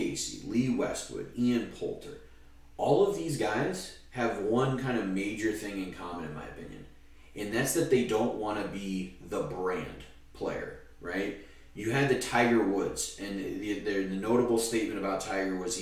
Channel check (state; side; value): identical; both; correlation 1.00